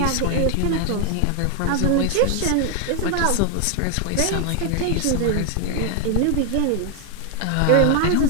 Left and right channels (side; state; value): both; different; correlation 0.00